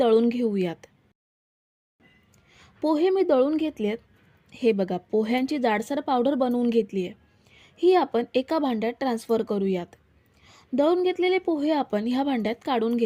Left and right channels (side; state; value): both; identical; correlation 1.00